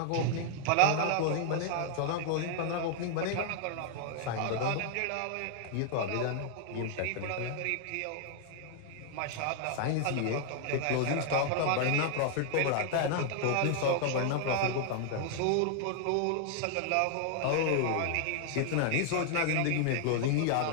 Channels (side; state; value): both; different; correlation 0.00